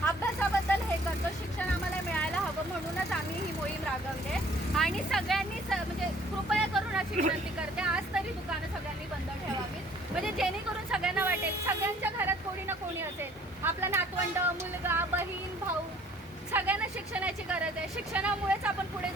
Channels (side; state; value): both; normal; correlation 0.56